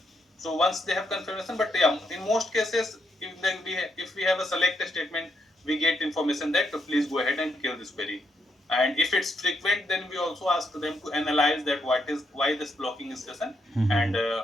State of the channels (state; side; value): normal; both; correlation 0.77